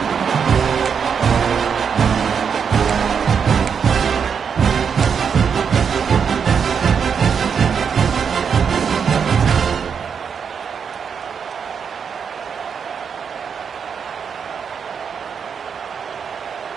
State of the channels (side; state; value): left; quieter; 6.7 dB